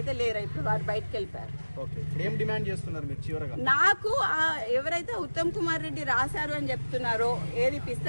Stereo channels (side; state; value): both; inverted; correlation -1.00